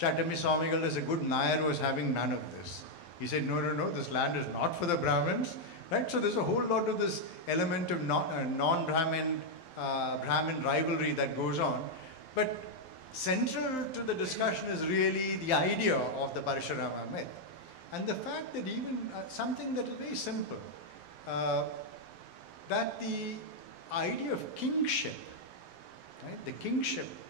Swamigal, as a good Nair, was having none of this. He said, no, this land is not for the Brahmins, right? So there's a whole lot of this element of non-Brahmin, Brahmin rivalry that goes on. But central to the discussion is really the idea of the Parashurama myth. And the fact that even something that is very simple, that the idea of kingship, right? The kingship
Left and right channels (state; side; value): late; right; 12 ms